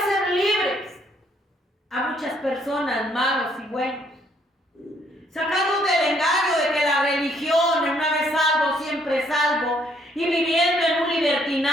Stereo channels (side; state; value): both; normal; correlation 0.68